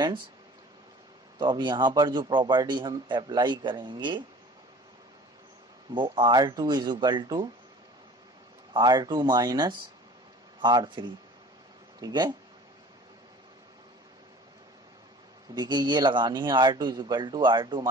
तो अब यहाँ पर जो प्रॉपर्टी हम अप्लाई करेंगे वो R2 is equal to R2 minus R3, ठीक है। देखिए ये लगानी है R2 is equal to R2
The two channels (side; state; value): both; normal; correlation 0.46